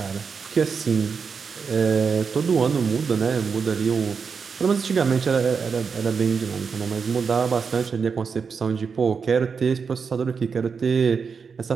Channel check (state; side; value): quieter; left; 5.7 dB